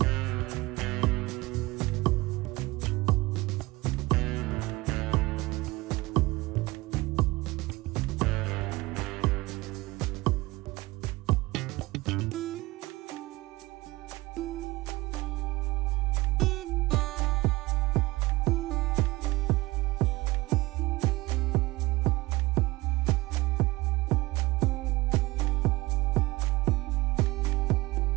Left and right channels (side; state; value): left; quieter; 21.0 dB